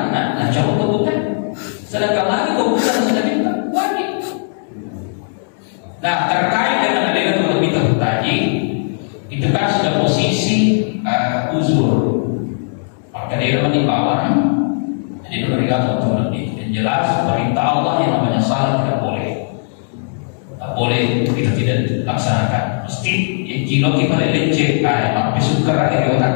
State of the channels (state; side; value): silent; right; 68 dB below the other